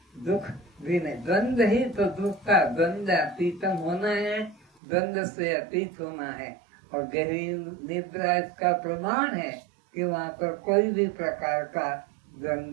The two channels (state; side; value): drops out; left; at 4.7 s